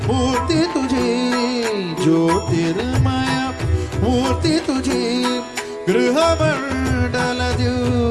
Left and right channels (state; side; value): identical; both; correlation 1.00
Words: मूर्ती तुझी ज्योतिर्मय मूर्ती तुझी गृहमंडल